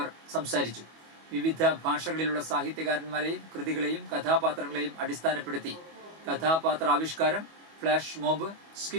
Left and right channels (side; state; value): left; late; 25 ms